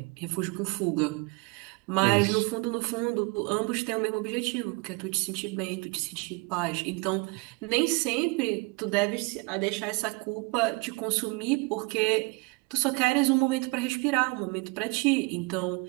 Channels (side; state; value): left; quieter; 27.6 dB